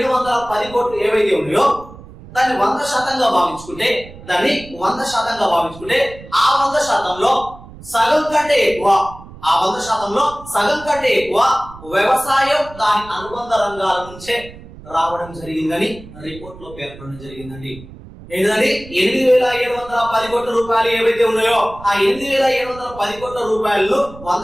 కోట్లు ఏవైతే ఉన్నాయో దాన్ని 100% భావించుకుంటే ఆ 100%లో సగం కంటే ఎక్కువ వ్యవసాయం దాని అనుబంధ రంగాల నుంచే రావడం జరిగిందని రిపోర్ట్ లో పేర్కొనడం జరిగిందండి. ఏంటంటే 8,710 కోట్ల రూపాయలు ఏవైతే ఉన్నాయో ఆ 8,710 కోట్ల రూపాయలను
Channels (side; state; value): right; noise; rumble, 18 dB below the sound